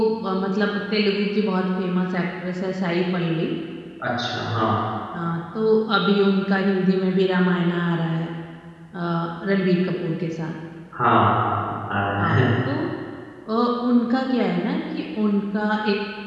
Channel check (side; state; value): both; identical; correlation 1.00